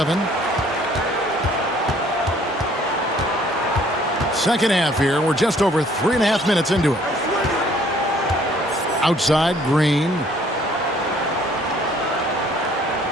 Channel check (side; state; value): both; normal; correlation 0.59